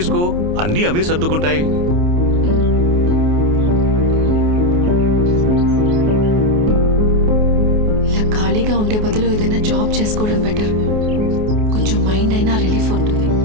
అన్నీ అవే సర్దుకుంటాయి. ఇలా ఖాళీగా ఉండే బదులు ఏదైనా జాబ్ చేసుకోవడం బెటర్. కొంచెం మైండ్ అయినా రిలీఫ్ ఉంటుంది.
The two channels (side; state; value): left; late; 28 ms